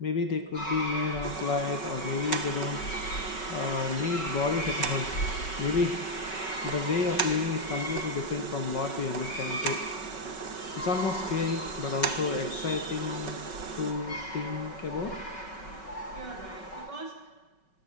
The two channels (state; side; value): late; right; 5.3 ms